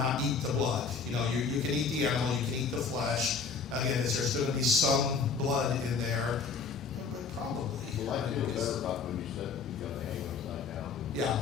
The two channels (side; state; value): right; quieter; 5.2 dB